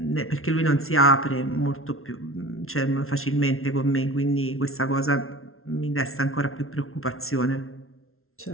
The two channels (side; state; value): right; late; 0.62 ms